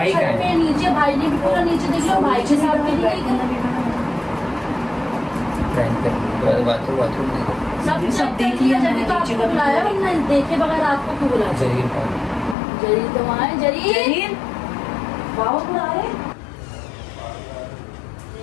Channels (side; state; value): right; drops out; at 12.6 s